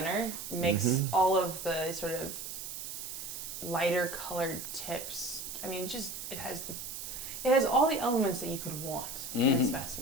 makes Mhm. all of the sort of lighter colored tips. I mean, it has all the elements that you could want in a Mhm.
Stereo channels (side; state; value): right; noise; hiss, 7 dB below the sound